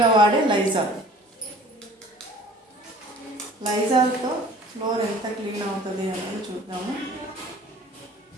వాడే లైజాల్. లైజాల్తో ఫ్లోర్ ఎంత క్లీన్ అవుతుంది అనేది చూద్దాము.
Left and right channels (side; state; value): both; normal; correlation 0.48